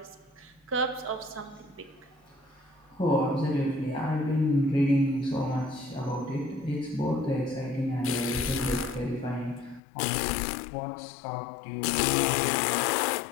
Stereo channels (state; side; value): drops out; right; at 9.8 s